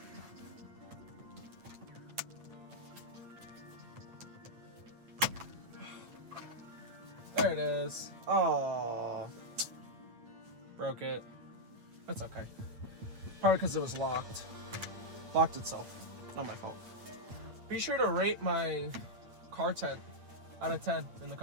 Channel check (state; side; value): late; left; 8.9 ms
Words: There it is. Oh, broke it. That's okay. Probably because it was locked. Locked itself. Not my fault. Be sure to rate my car tent out of 10 in the